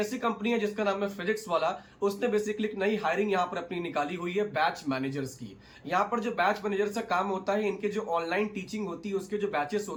कंपनी है जिसका नाम है फिजिक्स वाला। उसने बेसिकली एक नई हायरिंग यहाँ पर अपनी निकाली हुई है बैच मैनेजर्स की। यहाँ पर जो बैच मैनेजर का काम होता है, इनके जो ऑनलाइन टीचिंग होती है उसके जो बैचेस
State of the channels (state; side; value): identical; both; correlation 1.00